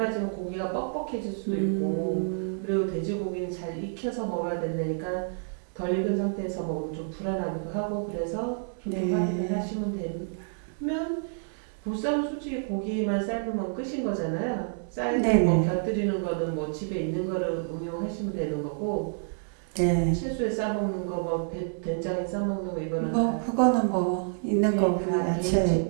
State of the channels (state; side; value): silent; left; digital silence